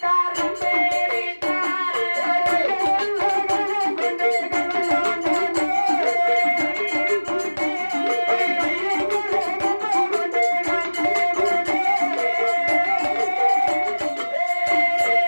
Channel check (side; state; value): both; inverted; correlation -1.00